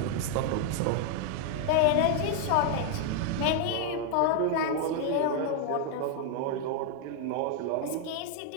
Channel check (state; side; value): different; both; correlation 0.00